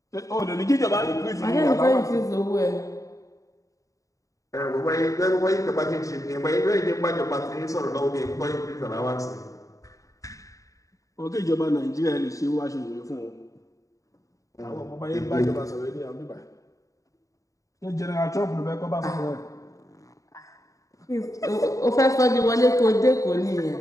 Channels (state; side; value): late; right; 0.16 ms